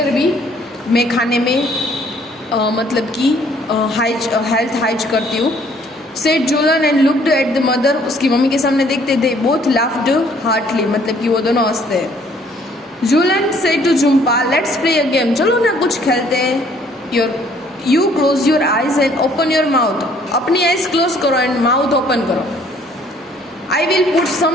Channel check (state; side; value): normal; both; correlation 0.61